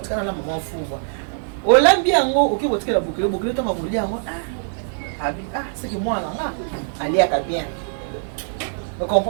la maman fuva olambi yango oki botikela bokilo tanga bolia yango abi c'est que moi nga ali aka bien vous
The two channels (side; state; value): left; silent; digital silence